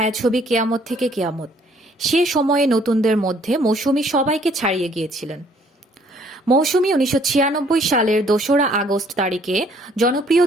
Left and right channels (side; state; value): both; normal; correlation 0.62